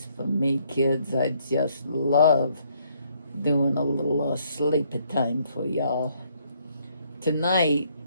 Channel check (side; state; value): both; inverted; correlation -0.68